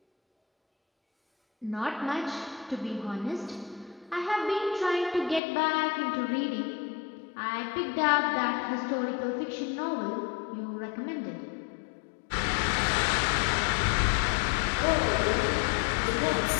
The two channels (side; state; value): right; drops out; at 5.4 s